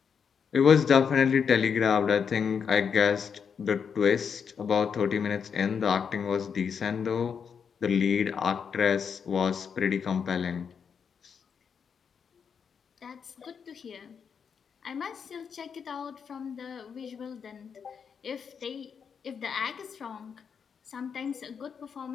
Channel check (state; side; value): quieter; right; 6.7 dB